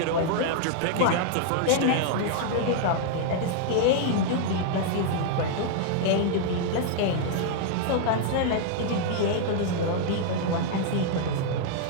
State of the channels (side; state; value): both; different; correlation -0.01